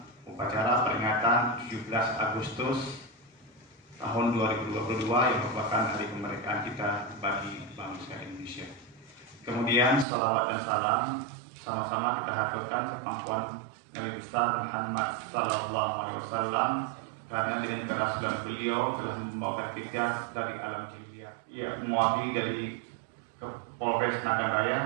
upacara peringatan 17 Agustus tahun 2022 yang merupakan hari kemerdekaan kita bagi bangsa Indonesia. Kemudian salawat dan salam sama-sama kita haturkan ke pangkuan Nabi besar Muhammad Sallallahu Alaihi Wasallam, karena dengan kerasulan beliau telah membawa kita dari alam jahiliyah. Ya, mewakili dari Polres Nagan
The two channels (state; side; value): drops out; left; at 10.1 s